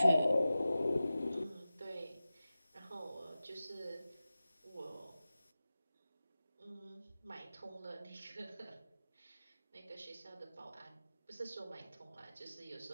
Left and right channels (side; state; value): both; inverted; correlation -0.95